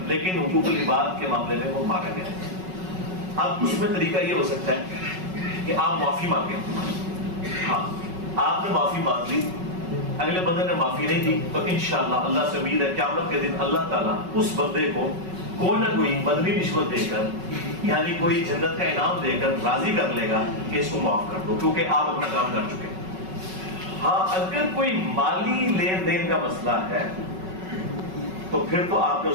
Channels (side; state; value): left; late; 5.3 ms